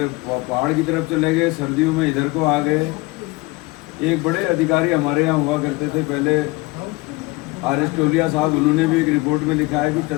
पहाड़ की तरफ चले गए, सर्दियों में इधर को आ गए। एक बड़े अधिकारी हमारे यहाँ हुआ करते थे पहले, आर.एस. टोलिया साहब, उन्होंने भी एक रिपोर्ट में लिखा है कि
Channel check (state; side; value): quieter; right; 23.3 dB